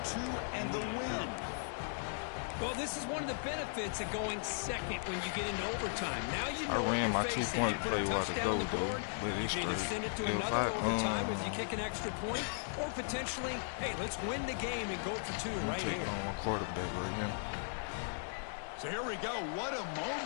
2 and the win. Well, this is one of the benefits of going second when you get into overtime. Now you know I ran my facing. 2-point play while to go though, but it's You straight. send it to If another overtime if you kick an extra point, or potentially, hey, let's win the game and go for 2 right take here. on my quarterback right here. So here we go. What a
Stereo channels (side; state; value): right; silent; digital silence